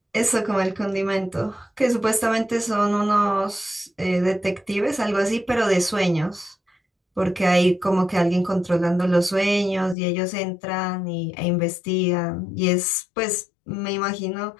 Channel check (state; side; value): drops out; right; at 10.0 s